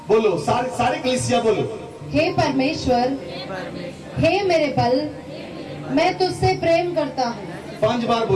बोलो सारे कलीसिया बोलो, हे परमेश्वर, हे मेरे बल, मैं तुझसे प्रेम करता हूँ। 5 बार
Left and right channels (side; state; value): both; identical; correlation 1.00